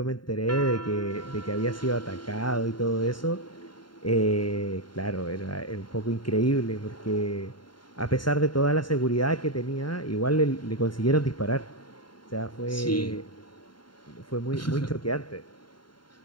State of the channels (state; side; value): late; right; 0.72 ms